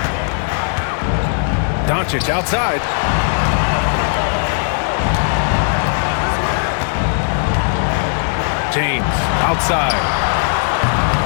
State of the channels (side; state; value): right; silent; 68 dB below the other